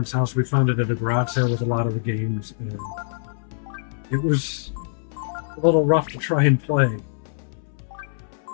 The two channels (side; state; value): right; silent; 63 dB below the other